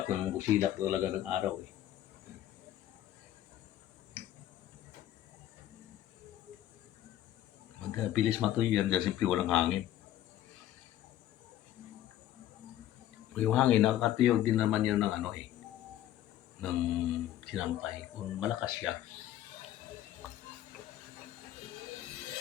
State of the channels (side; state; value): right; quieter; 12.7 dB